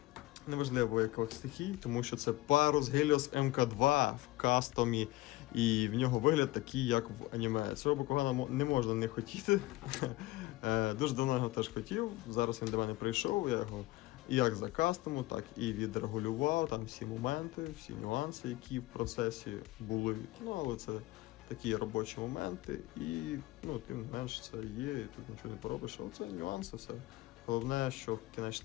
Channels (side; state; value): right; quieter; 18.6 dB